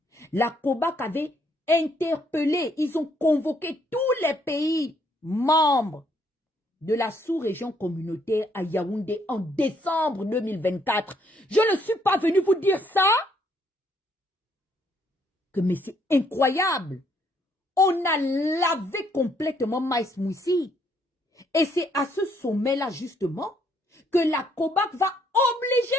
La COBAC avait interpellé, ils ont convoqué tous les pays membres de la sous-région communautaire à Yaoundé en décembre 2024. Je ne suis pas venu vous dire ça. Mais c'est incroyable. On a lavé complètement Maïs Moussi. Et c'est à ce sommet-là, justement, que la COBAC va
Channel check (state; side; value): normal; both; correlation 0.69